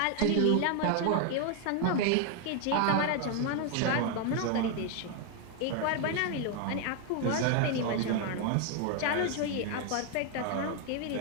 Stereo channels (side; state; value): both; different; correlation 0.00